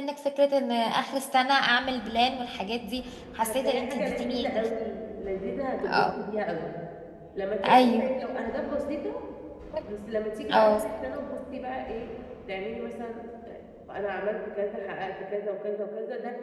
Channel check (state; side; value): identical; both; correlation 1.00